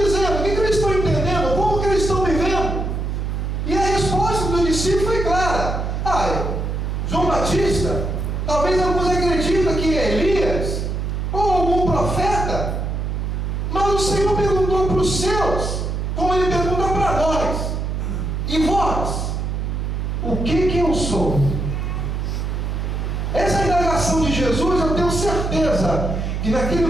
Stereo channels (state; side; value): noise; right; hum, 2 dB below the sound